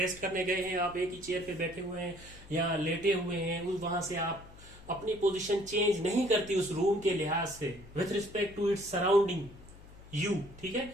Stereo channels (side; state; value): left; noise; hum, 20 dB below the sound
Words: करने गए हैं, आप एक ही चेयर पे बैठे हुए हैं या लेटे हुए हैं, वहां से आप अपनी पोजीशन चेंज नहीं करती उस रूम के लिहाज से, with respect to its surrounding you, ठीक है,